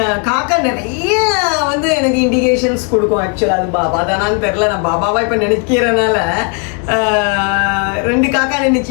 காக்கா நிறைய வந்து எனக்கு இண்டிகேஷன்ஸ் கொடுக்கும். ஆக்சுவலாக அது பாபா தானான்னு தெரில, நான் பாபாவா இப்போ நினைக்கிறனால 2 காக்கா நினைச்சு.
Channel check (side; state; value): right; quieter; 37.1 dB